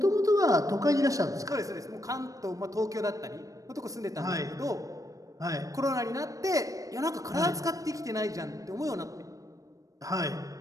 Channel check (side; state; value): left; late; 0.16 ms